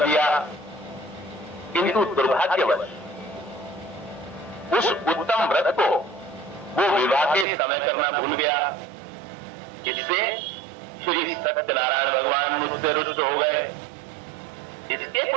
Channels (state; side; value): drops out; left; at 7.5 s